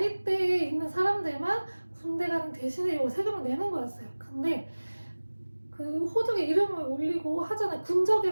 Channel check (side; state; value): both; inverted; correlation -1.00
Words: 있는 사람들만 군대 가는 대신에 이 세금을 내는 거였어요. 근데 그 호적에 이름을 올리고 하잖아요.